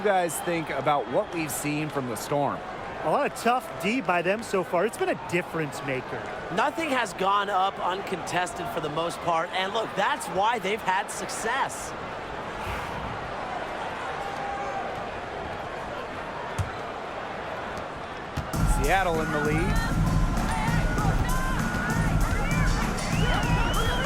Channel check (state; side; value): identical; both; correlation 1.00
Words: guys think about what we've seen from the Storm? A lot of tough D by them so far. It's been a difference maker. Nothing has gone up uncontested for the most part. And look, that's why they've had success. Seattle in the lead.